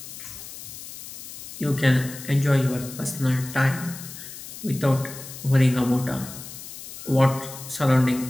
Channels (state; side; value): noise; left; hiss, 13 dB below the sound